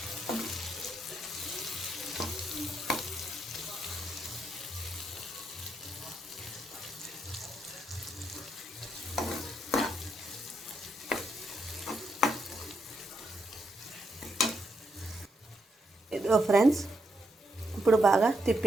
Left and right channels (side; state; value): both; normal; correlation 0.79